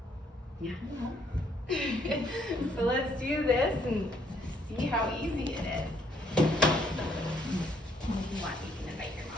Yeah. No. So let's do this and see how easy it is. If you want, you can invite your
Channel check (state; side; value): normal; both; correlation 0.68